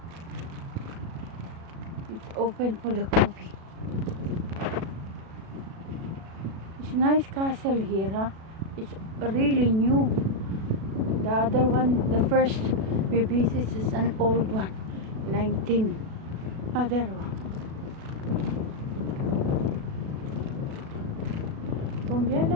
It's open for the coffee. It's nice castle here, huh? It's really new. The other one, the first we visit is an old one. 19. Other one.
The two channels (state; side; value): late; left; 37 ms